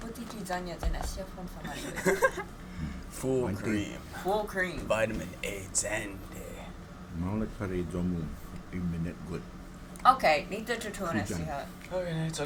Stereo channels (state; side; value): identical; both; correlation 1.00